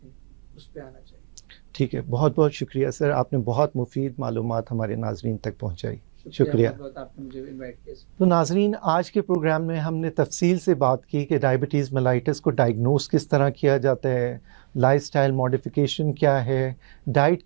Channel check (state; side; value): silent; left; 61 dB below the other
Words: हैं, उस पर आना चाहिए। ठीक है। बहुत बहुत शुक्रिया सर, आपने बहुत मुफीद मालूमात हमारे नाजरीन तक पहुँचाई। शुक्रिया बहुत बहुत, आपने मुझे इन्वाइट किया। तो नाजरीन, आज के प्रोग्राम में हमने तफसील से बात की कि डायबिटीज़ मेलाइटिस को डायग्नोस किस तरह किया जाता है, लाइफस्टाइल मॉडिफिकेशन क्या है, डाइट